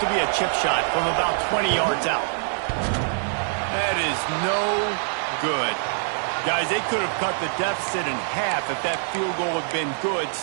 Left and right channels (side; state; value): left; silent; 62 dB below the other